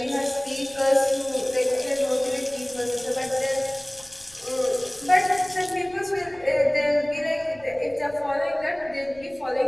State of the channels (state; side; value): noise; left; rumble, 25 dB below the sound